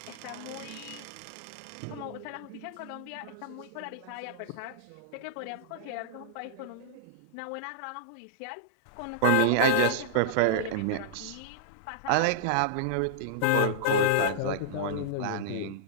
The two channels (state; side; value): different; both; correlation -0.02